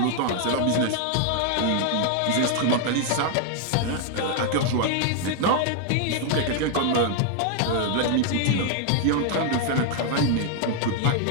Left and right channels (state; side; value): different; both; correlation 0.00